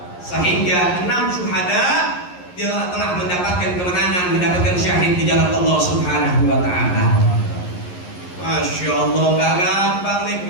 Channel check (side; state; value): right; late; 11 ms